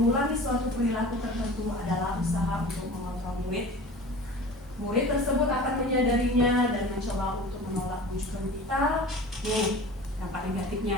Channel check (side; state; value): both; normal; correlation 0.39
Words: suatu perilaku tertentu adalah usaha untuk mengontrol murid. Murid tersebut akan menyadarinya dan mencoba untuk menolak bujukan kita. Nih, dampak